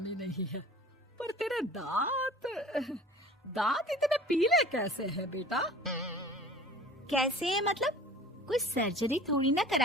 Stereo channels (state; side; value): normal; both; correlation 0.44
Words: नहीं है, पर तेरे दांत इतने पीले कैसे हैं बेटा? कैसे मतलब? कोई सर्जरी थोड़ी ना